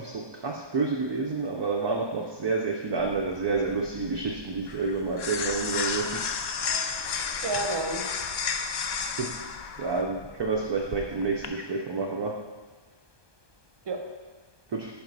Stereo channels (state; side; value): late; left; 1.2 ms